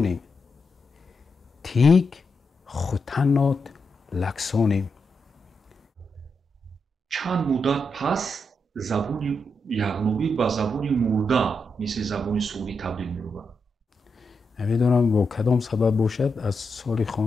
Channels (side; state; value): both; normal; correlation 0.84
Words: تیگ خوتنات لکسانیم. چند مدت پس زبون یغنوبی با زبون مرده مثل زبون سعودی تبدیل می‌شود. نمیدونم با کدام سبب باشد از سال